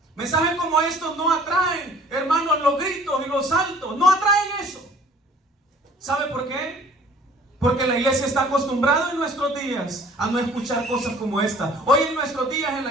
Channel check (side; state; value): both; normal; correlation 0.52